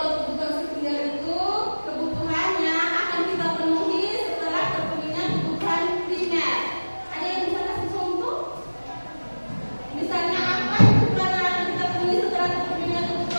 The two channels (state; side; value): inverted; both; correlation -1.00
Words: kebutuhan sekunder itu kebutuhannya akan kita penuhi setelah terpenuhinya kebutuhan primer. Ada yang bisa kasih contoh? Misalnya apa kebutuhan yang akan kita penuhi setelah terpenuhinya